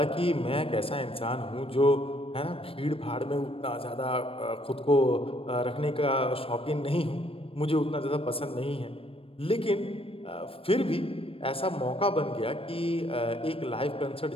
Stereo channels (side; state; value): right; late; 0.27 ms